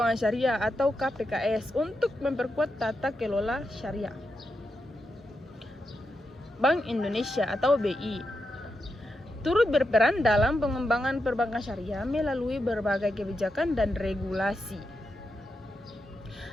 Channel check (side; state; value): both; normal; correlation 0.86